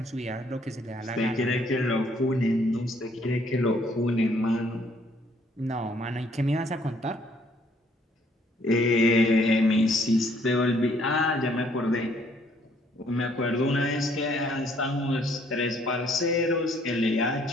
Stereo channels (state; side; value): normal; both; correlation 0.64